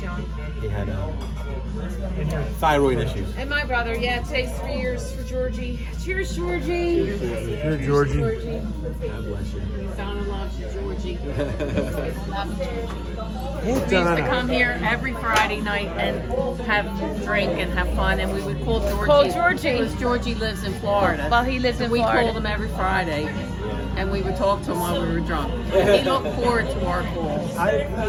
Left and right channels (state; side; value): identical; both; correlation 1.00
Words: young. He had thyroid issues. And my brother, yeah, today's 3 years for Georgie. Cheers, Georgie. Here, Georgie. God bless you. Donna loves you, Georgie. Hey, We used to Donna. come here every Friday night and have drink and have fun, and we would call Georgie. Call Georgie. Because Georgie lives in Florida. Well, he lives in We Florida. called him every Friday, and we would talk to him while we were drunk. He looked forward to our calls.